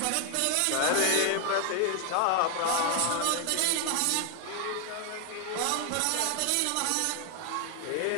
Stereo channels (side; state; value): both; different; correlation 0.00